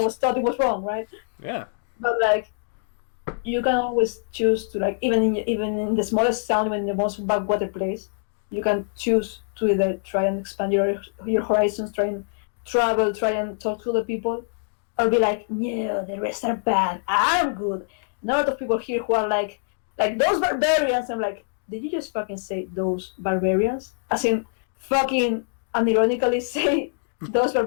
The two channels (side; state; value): right; silent; digital silence